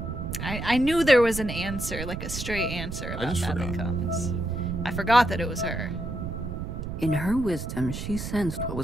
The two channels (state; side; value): noise; right; rumble, 6 dB below the sound